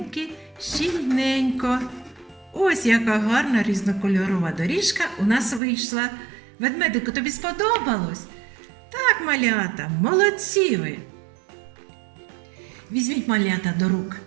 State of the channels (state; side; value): drops out; left; at 5.6 s